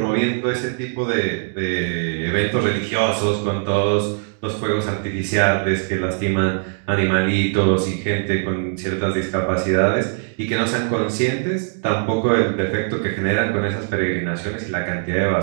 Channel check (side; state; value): left; silent; 56 dB below the other